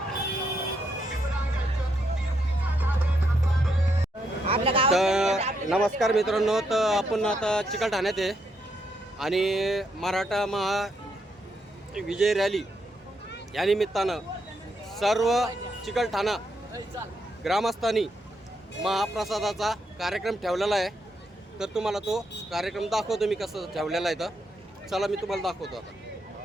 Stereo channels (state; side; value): normal; both; correlation 0.78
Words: तर नमस्कार मित्रांनो, तर आपण आता चिकलठाण्यात आहे आणि मराठा महा विजय रॅली या निमित्तानं सर्व चिकलठाणा ग्रामस्थांनी महाप्रसादाचा कार्यक्रम ठेवलेला आहे. तर तुम्हाला तो कार्यक्रम दाखवतो मी कसं ठेवलेला आहे. तर चला मी तुम्हाला दाखवतो आता.